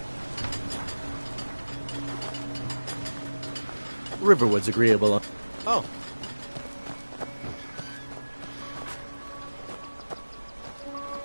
Riverwood's agreeable. Oh.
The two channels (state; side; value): inverted; both; correlation -1.00